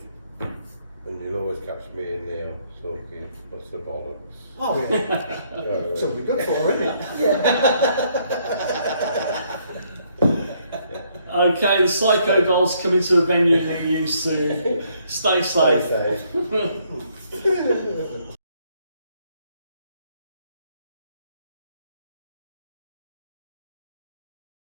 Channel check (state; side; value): inverted; both; correlation -0.70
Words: And you'll always catch me and Neil talking, what's the bollocks? Oh, yeah. Something good for, isn't it? Okay, the Psycho Dollz coming to a venue near you soon. Stay safe. Stay safe.